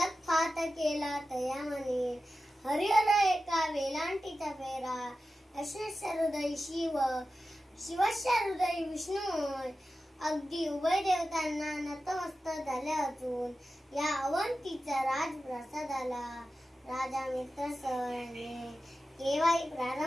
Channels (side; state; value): both; normal; correlation 0.93